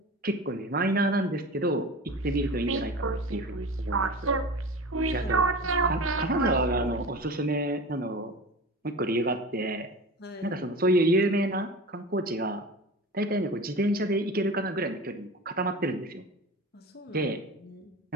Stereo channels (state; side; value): normal; both; correlation 0.33